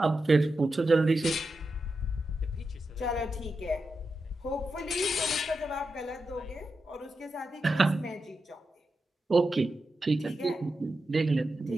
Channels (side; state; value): both; normal; correlation 0.89